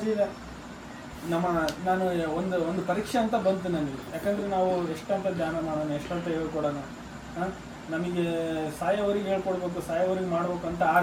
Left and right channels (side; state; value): both; identical; correlation 1.00